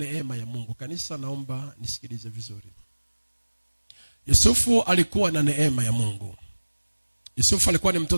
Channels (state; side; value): inverted; both; correlation -1.00